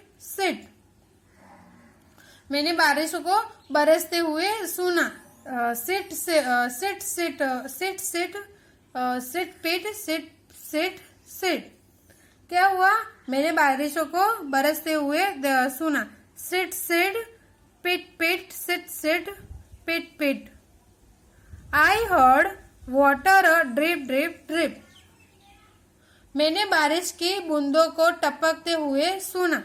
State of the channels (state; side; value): identical; both; correlation 1.00